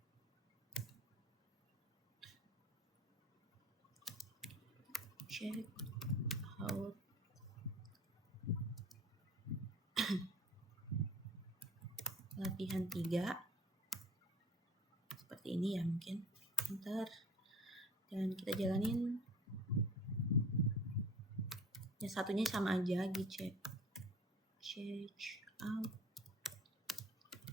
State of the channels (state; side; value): normal; both; correlation 0.44